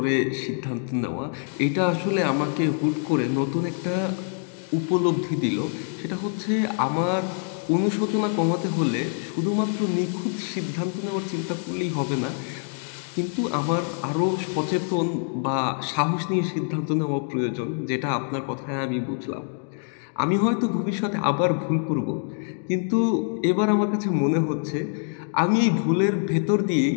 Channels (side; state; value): right; silent; 56 dB below the other